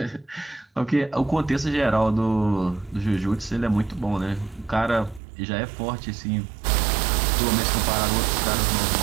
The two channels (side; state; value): left; drops out; at 5.2 s